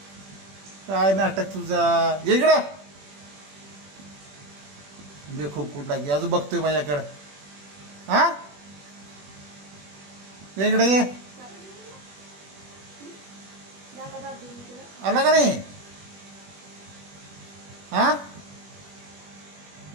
काय नाटक तुझा. ये इकडं. बे खूप कुठला की अजून बघतोय माझ्याकडं. हा ये इकडे ये. दादा दादा देऊन तुला. आला का नाही? हा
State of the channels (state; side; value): late; left; 21 ms